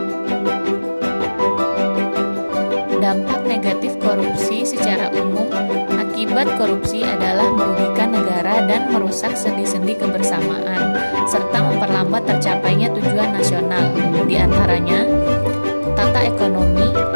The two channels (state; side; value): inverted; both; correlation -1.00